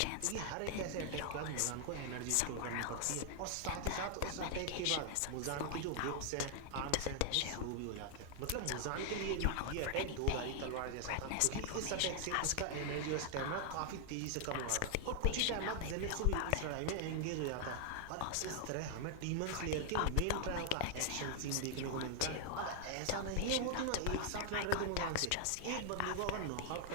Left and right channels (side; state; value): both; different; correlation 0.00